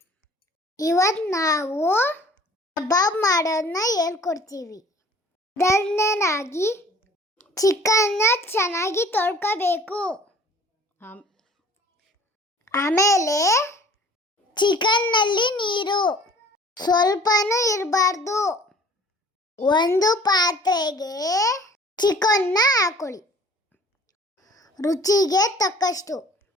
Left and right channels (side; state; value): both; normal; correlation 0.50